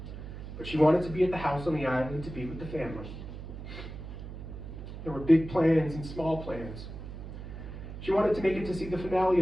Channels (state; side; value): noise; right; hum, 10 dB below the sound